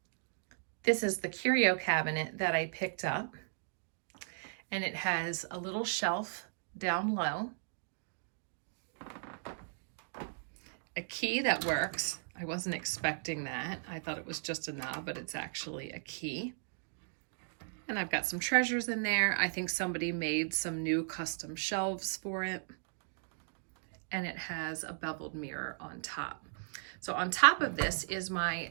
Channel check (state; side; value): silent; left; digital silence